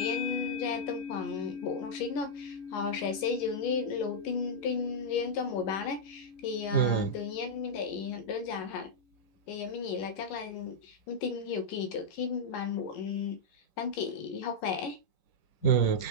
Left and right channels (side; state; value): right; late; 11 ms